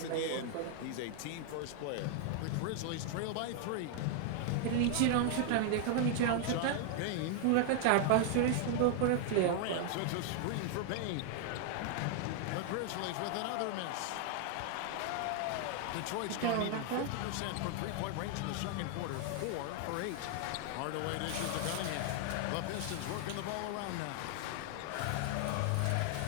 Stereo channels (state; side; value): different; both; correlation 0.00